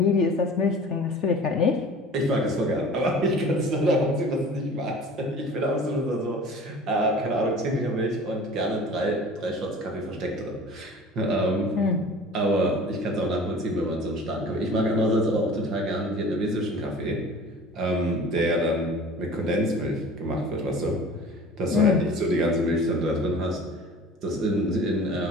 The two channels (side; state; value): both; normal; correlation 0.42